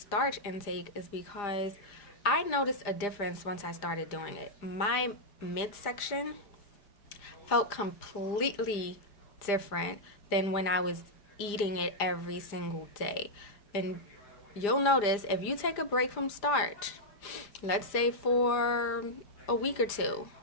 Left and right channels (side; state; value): right; late; 4.9 ms